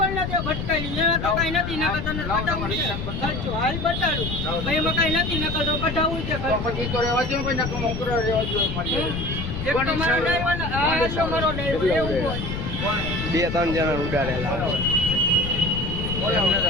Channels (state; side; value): noise; left; rumble, 5 dB below the sound